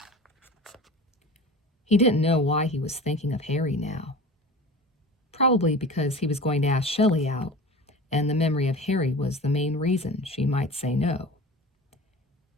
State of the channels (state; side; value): normal; both; correlation 0.36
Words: He didn't know why he was thinking of Harry now. Probably because he was going to ask Shelly out, and the memory of Harry was the main reason she might say no.